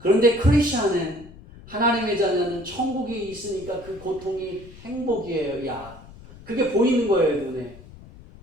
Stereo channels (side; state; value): left; noise; rumble, 19 dB below the sound